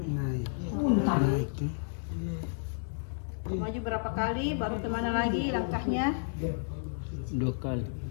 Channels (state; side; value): silent; right; 57 dB below the other